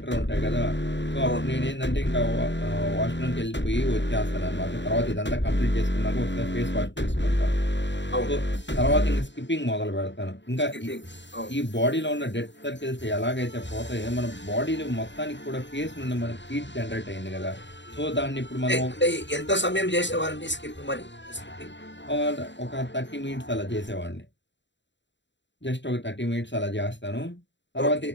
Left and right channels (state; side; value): late; right; 0.53 ms